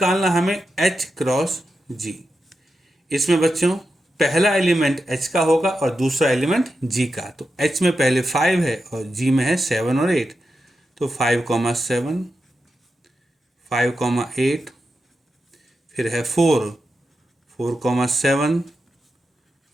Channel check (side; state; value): both; normal; correlation 0.89